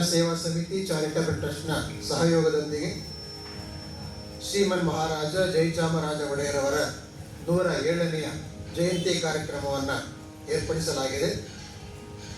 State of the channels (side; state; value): both; identical; correlation 1.00